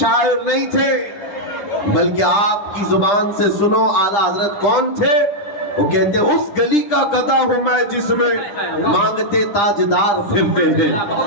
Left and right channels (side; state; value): right; late; 9.9 ms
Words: نہیں تھے، بلکہ آپ کی زبان سے سنو اعلیٰ حضرت کون تھے؟ وہ کہتے اس گلی کا گدھا ہوں میں جس میں مانگتے تاجدار پھرتے ہیں،